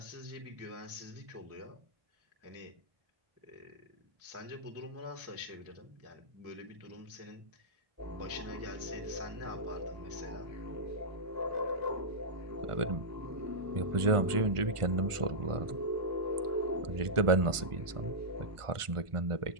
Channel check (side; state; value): left; late; 1.4 ms